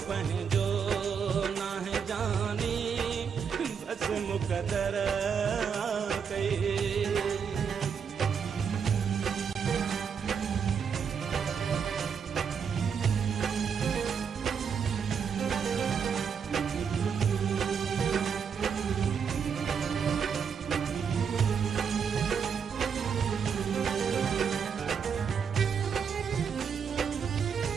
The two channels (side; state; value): left; quieter; 6.7 dB